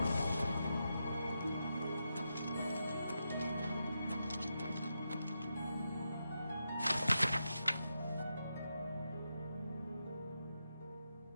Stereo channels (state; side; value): inverted; both; correlation -0.86